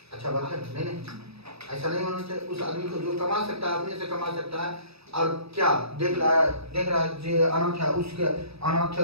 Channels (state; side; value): late; left; 0.78 ms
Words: अच्छा बात है? नहीं, ऐसा नहीं होना चाहिए। उस आदमी को जो कमा सकता है अपने से कमा सकता है और क्या देख रहा है जो अनाथ है उसके अनाथ